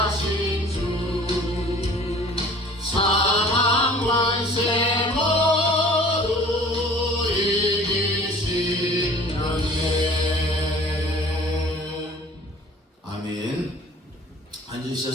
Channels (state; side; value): normal; both; correlation 0.48